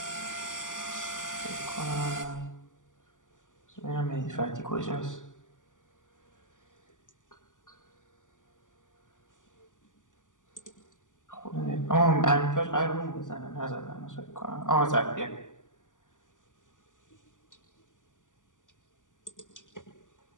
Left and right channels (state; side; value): late; right; 0.87 ms